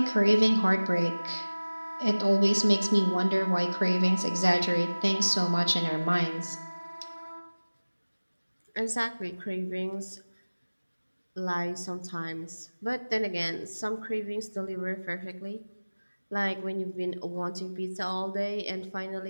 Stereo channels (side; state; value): both; inverted; correlation -1.00